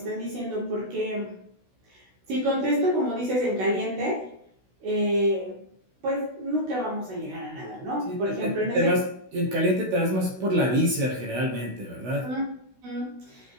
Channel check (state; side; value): late; left; 16 ms